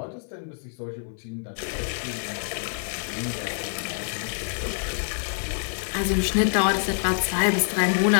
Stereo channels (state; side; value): silent; right; digital silence